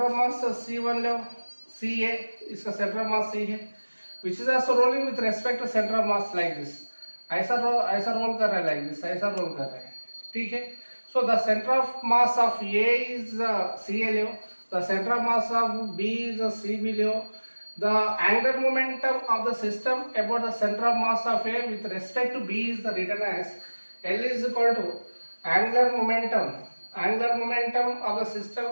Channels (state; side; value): inverted; both; correlation -1.00